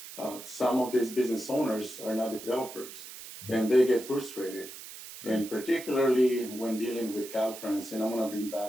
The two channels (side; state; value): right; noise; hiss, 13 dB below the sound